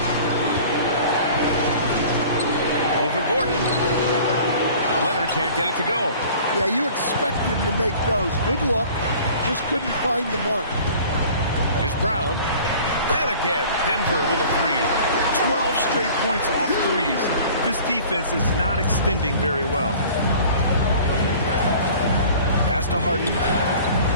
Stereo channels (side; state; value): both; inverted; correlation -0.46